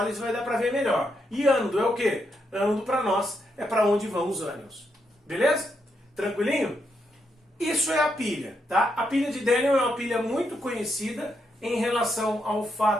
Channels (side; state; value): both; normal; correlation 0.80